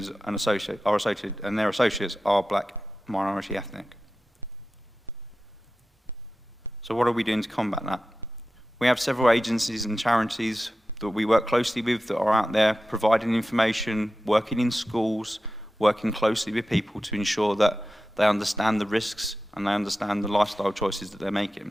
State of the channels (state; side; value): normal; both; correlation 0.93